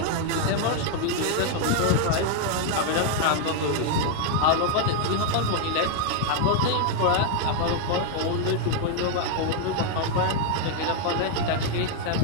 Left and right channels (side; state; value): both; different; correlation 0.00